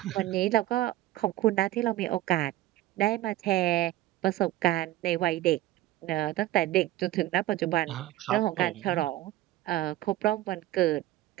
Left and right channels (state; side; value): quieter; left; 15.5 dB